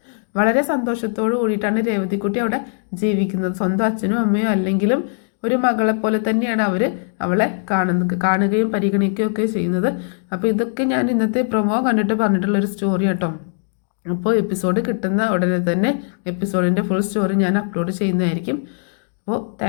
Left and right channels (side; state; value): right; silent; 66 dB below the other